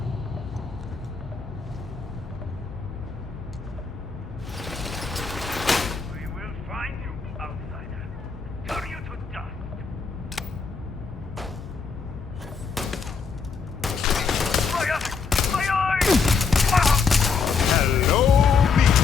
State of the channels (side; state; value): right; quieter; 5.2 dB